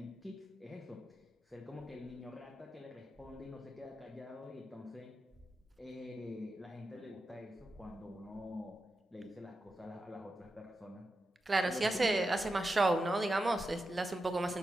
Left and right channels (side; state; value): both; normal; correlation 0.90